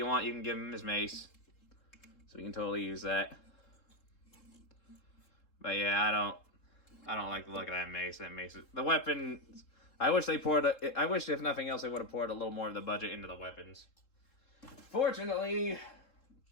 want, you can give him his mace. So you can totally use that. But yeah, I don't like the look of that mace. That mace is, the weapons. I wish if nothing else, they would have poured a little more of the budget into the weapons. Fortunately,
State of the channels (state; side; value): late; right; 3.7 ms